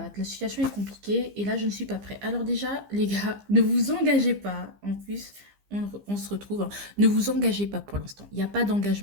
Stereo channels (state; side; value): late; left; 15 ms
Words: La situation est compliquée et là, je ne suis pas prêt. Alors déjà, les gars, ne vous engagez pas. En plus, on se retrouve, hein. Ne vous engagez pas pour l'instant. Il n'y a pas